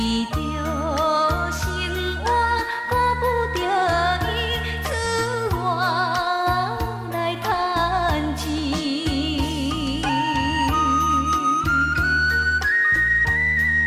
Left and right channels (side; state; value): both; identical; correlation 1.00